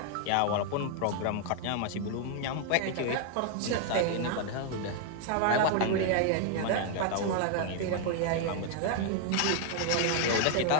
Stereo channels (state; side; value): different; both; correlation 0.00